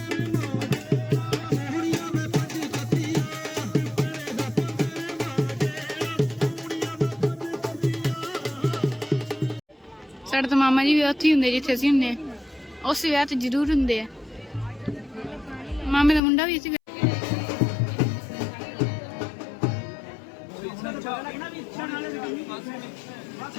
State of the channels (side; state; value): right; drops out; at 16.2 s